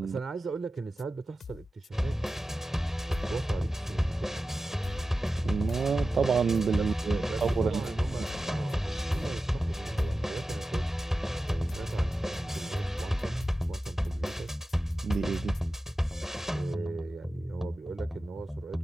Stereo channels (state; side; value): normal; both; correlation 0.94